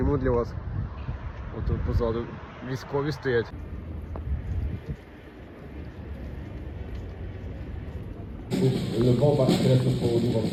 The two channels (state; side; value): identical; both; correlation 1.00